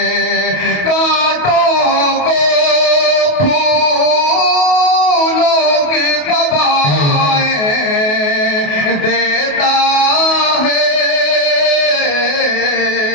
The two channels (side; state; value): right; late; 28 ms